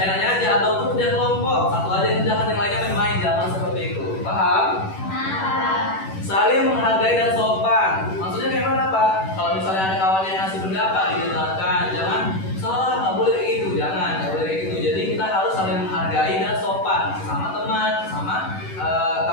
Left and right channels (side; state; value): right; late; 10 ms